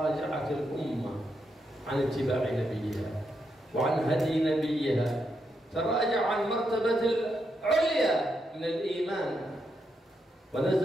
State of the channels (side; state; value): both; normal; correlation 0.82